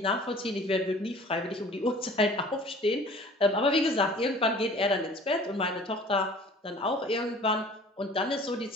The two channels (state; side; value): normal; both; correlation 0.48